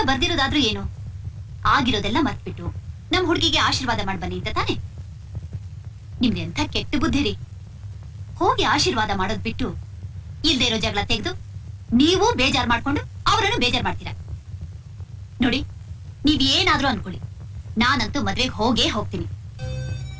ಬರ್ದಿರೋದಾದ್ರೂ ಏನು, ಆಗಿರೋದೆಲ್ಲ ಮರ್ತ್ಬಿಟ್ಟು ನಮ್ ಹುಡುಗಿಗೆ ಆಶೀರ್ವಾದ ಮಾಡಿ ಬನ್ನಿ ಅಂತ ತಾನೆ. ನಿಮ್ದು ಎಂಥ ಕೆಟ್ಟ ಬುದ್ಧಿ ರೀ. ಹೋಗಿ ಆಶೀರ್ವಾದ ಮಾಡೋದ್ ಬಿಟ್ಟು ಇಲ್ದೇ ಇರೋ ಜಗಳ ತೆಗೆದು ನೀವು ಬೇಜಾರ್ ಮಾಡ್ಕೊಂಡು ಅವರನ್ನು ಬೇಜಾರ್ ಮಾಡ್ತೀರಾ. ನೋಡಿ, ನೀವ್ ಏನಾದ್ರೂ ಅನ್ಕೊಳ್ಳಿ, ನಾನಂತೂ ಮದ್ವೆಗೆ ಹೋಗೇ ಹೋಗ್ತೀನಿ.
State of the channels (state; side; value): identical; both; correlation 1.00